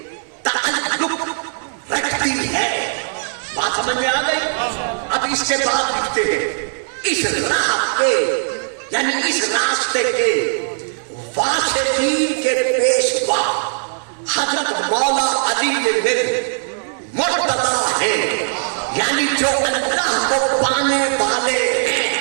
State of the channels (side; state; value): left; silent; digital silence